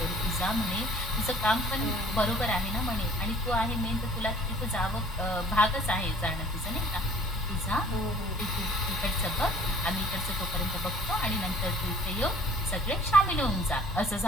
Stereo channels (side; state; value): both; normal; correlation 0.54